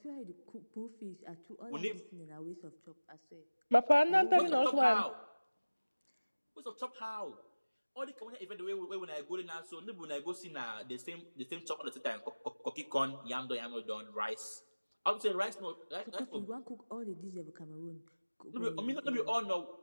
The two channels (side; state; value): both; inverted; correlation -1.00